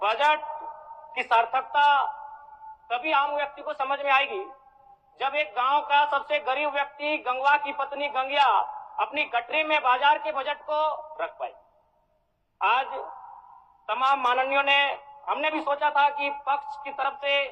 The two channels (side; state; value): both; identical; correlation 1.00